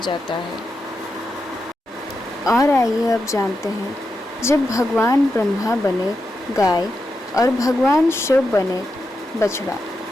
है। और आइए अब जानते हैं, जब भगवान ब्रह्मा बने गाय और भगवान शिव बने बछड़ा,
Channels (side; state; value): both; normal; correlation 0.87